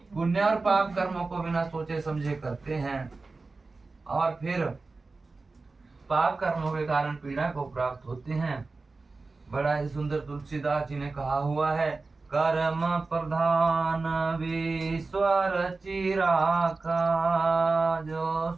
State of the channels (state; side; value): quieter; left; 3.7 dB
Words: पुण्य और पाप कर्मों को बिना सोचे समझे करते हैं और फिर पाप कर्मों के कारण पीड़ा को प्राप्त होते हैं। बड़ा ही सुंदर तुलसीदास जी ने कहा हुआ है, कर्म प्रधान विश्वर चिराका, जो